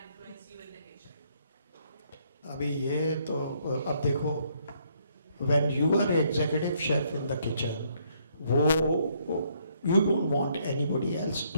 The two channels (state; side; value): inverted; both; correlation -0.69